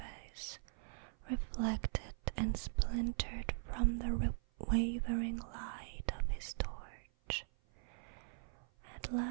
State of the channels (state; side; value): silent; left; 51 dB below the other